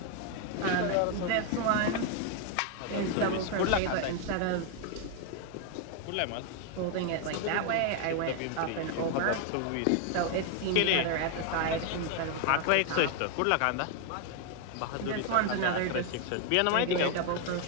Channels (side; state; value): both; different; correlation 0.01